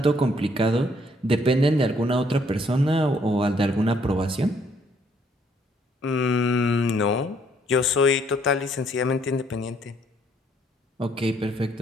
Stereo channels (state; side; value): normal; both; correlation 0.66